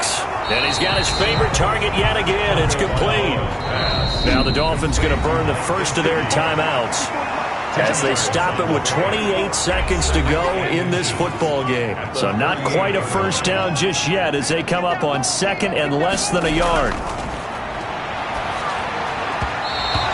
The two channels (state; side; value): identical; both; correlation 1.00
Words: And he's got his favorite target yet again. It's complete. Now the Dolphins going to burn the first of their timeouts as they stop it with 28 seconds to go in this football game. So not quite a first down just yet as they come up on 2nd and less than a yard.